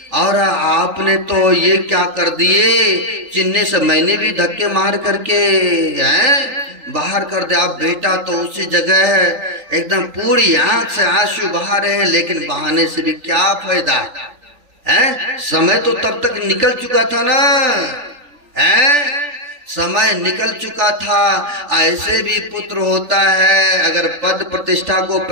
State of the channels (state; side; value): late; left; 3.8 ms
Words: और आपने तो ये क्या कर दिए, चिन्ने से मैंने भी धक्के मार करके हैं बाहर कर दे। आप बेटा तो उसी जगह है, एकदम पूरी आंख से आंसू बहा रहे हैं, लेकिन बहाने से भी क्या फायदा है, समय तो तब तक निकल चुका था ना है, समय निकल चुका था। ऐसे भी पुत्र होता है, अगर पद प्रतिष्ठा को